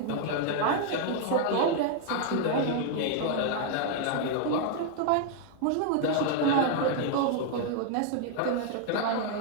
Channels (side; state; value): both; different; correlation 0.00